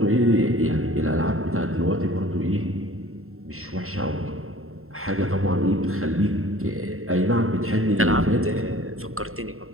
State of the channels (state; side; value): late; left; 0.62 ms